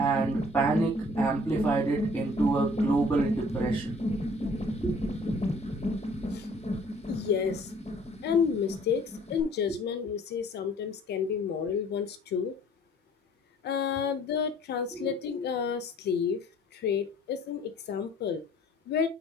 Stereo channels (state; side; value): normal; both; correlation 0.55